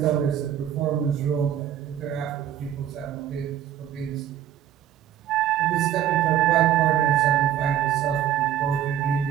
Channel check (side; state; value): left; quieter; 10.7 dB